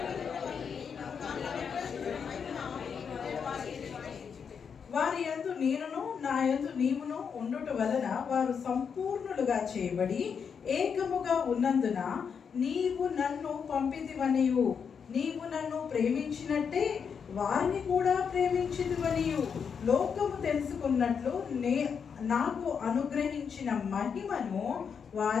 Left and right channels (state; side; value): quieter; right; 6.6 dB